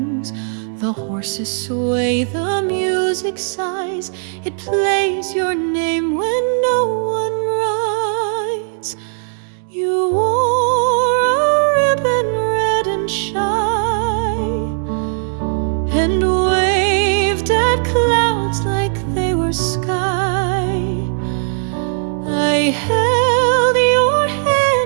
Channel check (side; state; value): left; silent; digital silence